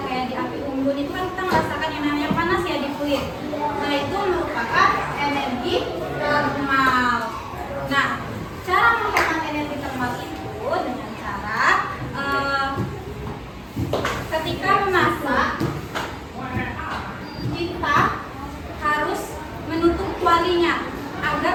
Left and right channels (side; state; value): both; identical; correlation 1.00